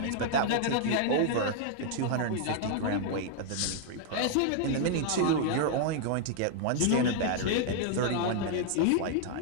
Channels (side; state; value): both; different; correlation 0.00